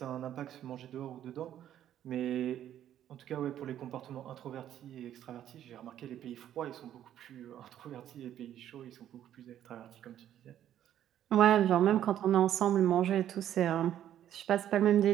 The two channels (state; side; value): quieter; left; 11.1 dB